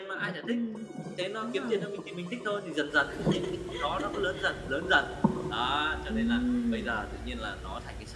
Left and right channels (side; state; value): both; identical; correlation 1.00